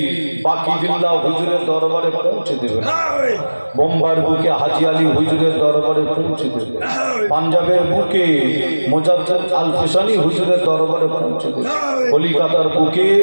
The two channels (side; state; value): both; inverted; correlation -1.00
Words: বাকিবিল্লাহ হুজুরের দরবারে পৌঁছে দেবেন, বোম্বার বুকে হাজি আলী হুজুরের দরবারে পৌঁছে দেবেন, পাঞ্জাবের বুকে মোজাদ্দেদ আল ফিসানি হুজুরের দরবারে পৌঁছে দেবেন, কলিকাতার বুকে